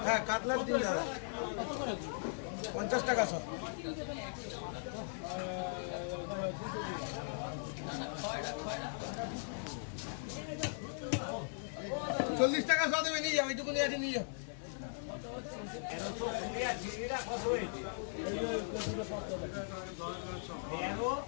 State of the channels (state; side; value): silent; right; 52 dB below the other